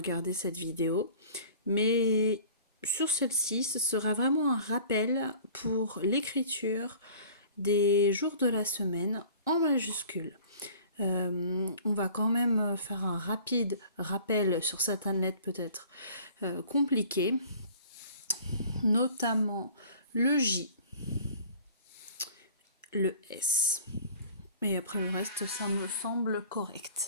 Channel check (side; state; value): both; inverted; correlation -0.47